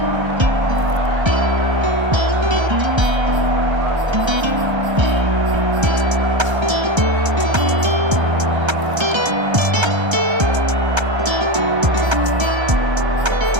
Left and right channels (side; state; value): left; late; 1.3 ms